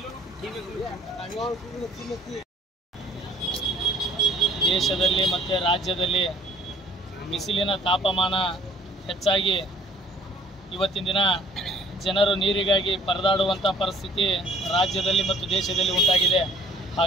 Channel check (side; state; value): both; normal; correlation 0.55